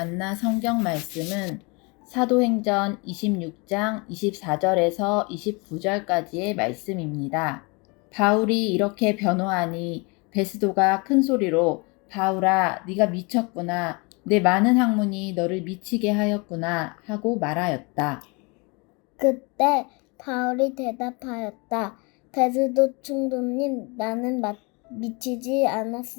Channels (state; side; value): quieter; right; 29.5 dB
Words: 성경 말씀은 사도행전 26장 24절에서 29절까지의 말씀입니다. 바울이 이렇게 변호하니 베스도가 큰 소리로 바울아, 네가 미쳤구나. 내 많은 학문이 너를 미치게 하였구나 하고 말하였다. 그때 바울이 대답하였다. 베스도 총독님, 나는 미치지